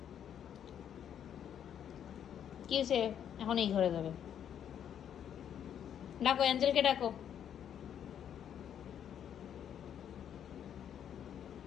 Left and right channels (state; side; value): quieter; right; 9.3 dB